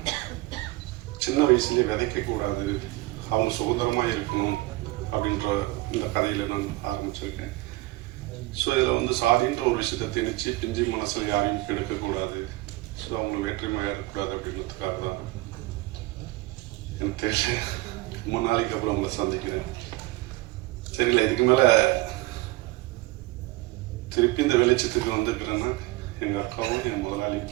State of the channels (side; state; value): left; quieter; 19.6 dB